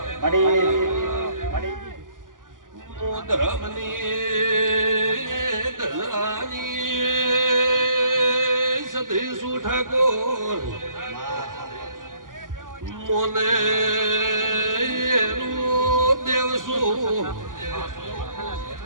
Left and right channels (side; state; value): left; late; 0.89 ms